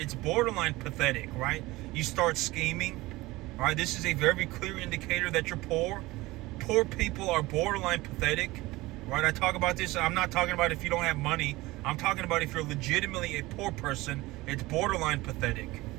borderline pathetic, right? You start scheming, all right? This is a very clear indicator that you're poor. Poor people are borderline pathetic, right? I talk about this. I'm not talking about if you don't have money. I'm talking about if you're legitimately a poor person, it's borderline pathetic.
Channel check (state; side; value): quieter; left; 20.0 dB